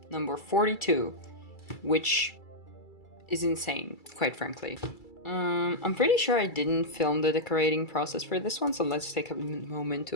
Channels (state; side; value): late; right; 2.3 ms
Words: number 42, which is insane, quite frankly. I'm pretty sure I didn't film the decorating process for this one, so let's take a moment to